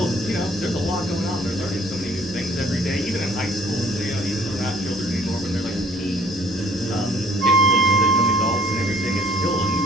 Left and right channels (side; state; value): both; normal; correlation 0.57